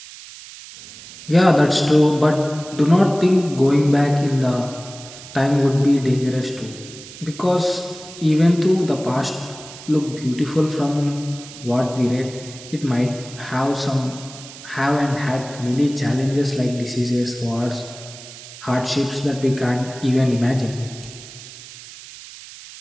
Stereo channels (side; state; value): right; noise; hiss, 16 dB below the sound